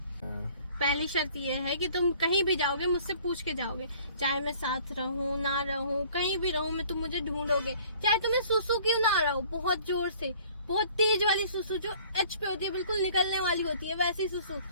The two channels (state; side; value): inverted; both; correlation -0.53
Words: पहली शर्त ये है कि तुम कहीं भी जाओगे मुझसे पूछ के जाओगे, चाहे मैं साथ रहूं ना रहूं, कहीं भी रहूं मैं, तुम मुझे ढूंढोगे, चाहे तुम्हें सुसु क्यों ना आ रहा हो, बहुत जोर से, बहुत तेज वाली सुसु जो एच पे होती है, बिल्कुल निकलने वाली होती है वैसी सुसु,